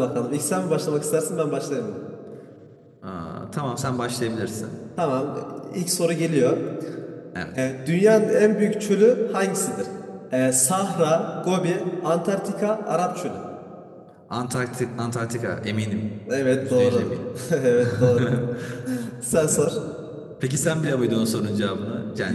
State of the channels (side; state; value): both; identical; correlation 1.00